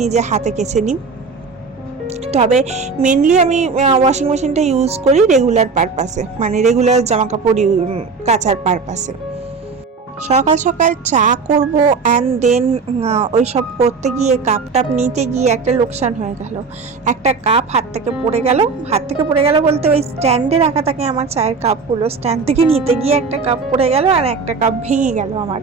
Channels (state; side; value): quieter; left; 4.8 dB